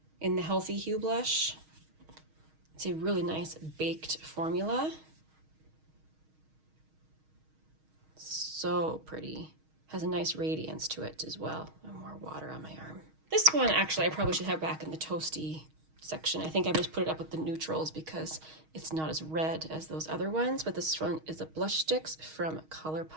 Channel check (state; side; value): late; left; 6.4 ms